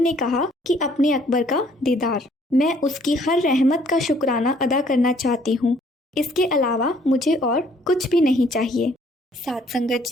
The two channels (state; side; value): normal; both; correlation 0.62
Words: कहा कि अपने अकबर का दीदार, मैं उसकी हर रहमत का शुक्राना अदा करना चाहती हूँ, इसके अलावा मुझे और कुछ भी नहीं चाहिए। साध संगत